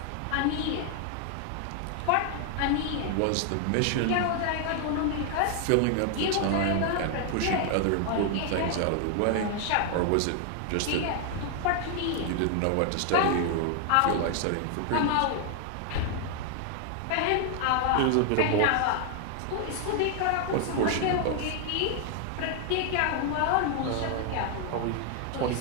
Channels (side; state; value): both; different; correlation 0.00